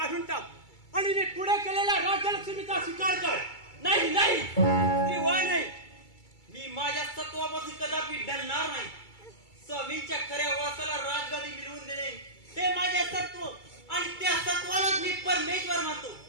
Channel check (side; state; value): right; late; 2.3 ms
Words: टाक आणि मी पुढे केलेल्या राज्यलक्ष्मीचा स्वीकार कर. नाही किंवा नाही. मी माझ्या सत्वापासून कदापि डरणार नाही. स्वामींच्या खऱ्या वासाला राजगादी मिळवून देणे हे माझे सत्व आणि त्या सत्वालाच मी परमेश्वर मानतो.